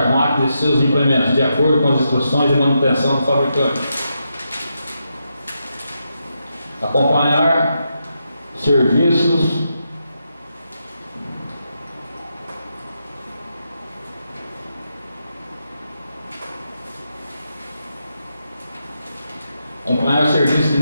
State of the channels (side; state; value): both; inverted; correlation -0.84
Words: máquinas e seus implementos, de acordo com as instruções de manutenção do fabricante. Acompanhar serviços de